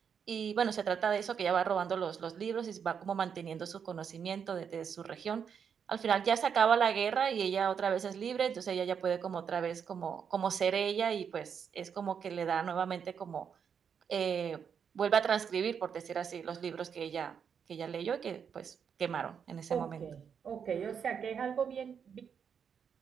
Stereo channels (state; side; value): quieter; left; 7.2 dB